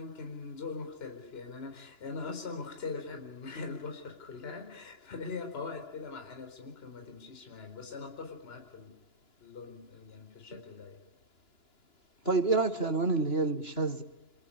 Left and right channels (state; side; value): late; right; 2.9 ms